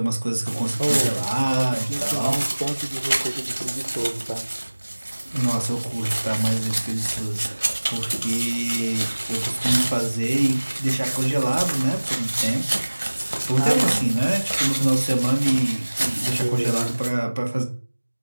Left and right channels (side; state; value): both; inverted; correlation -1.00